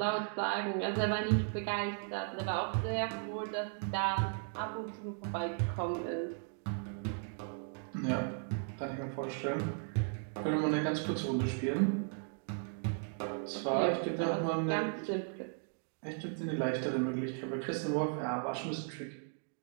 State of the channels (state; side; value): silent; left; 54 dB below the other